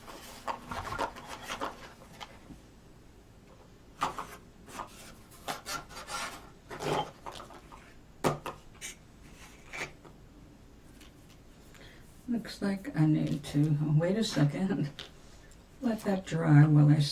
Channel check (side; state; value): both; identical; correlation 1.00